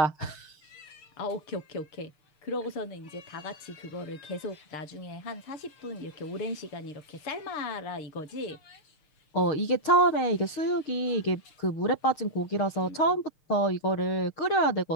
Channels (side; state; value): right; late; 6.6 ms